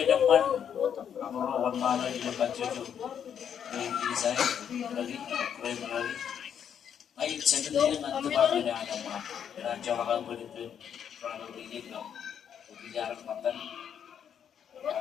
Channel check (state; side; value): quieter; right; 8.5 dB